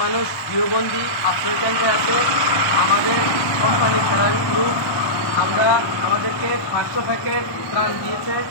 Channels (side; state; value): right; late; 1.2 ms